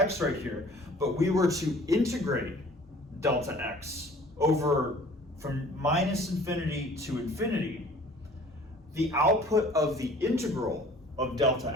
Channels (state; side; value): normal; both; correlation 0.50